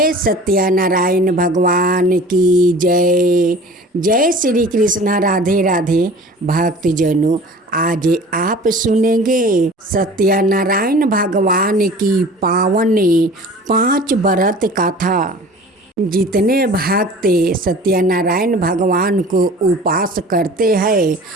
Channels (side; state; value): both; normal; correlation 0.43